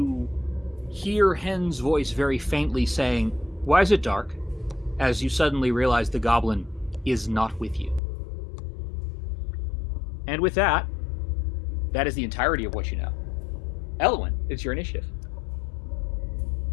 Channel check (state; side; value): drops out; right; at 8.0 s